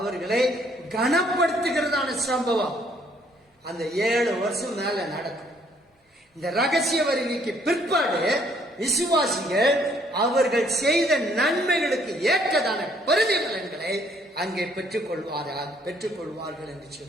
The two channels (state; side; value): normal; both; correlation 0.65